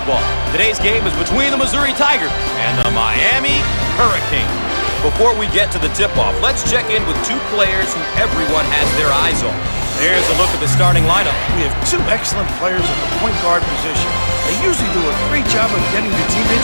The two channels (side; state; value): both; inverted; correlation -1.00